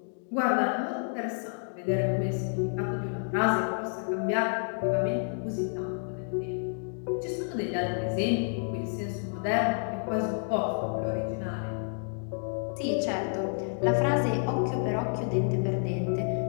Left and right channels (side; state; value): right; silent; 58 dB below the other